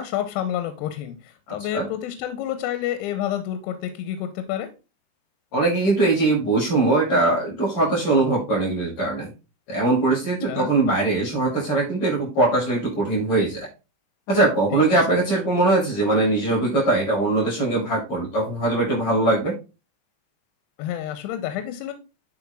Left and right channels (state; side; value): late; right; 20 ms